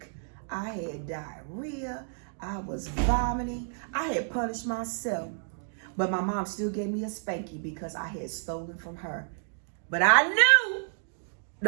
I had diarrhea. I was vomiting. I had punished myself. But my mom still gave me a spanky because I had stolen from her But I knew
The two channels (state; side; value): silent; left; digital silence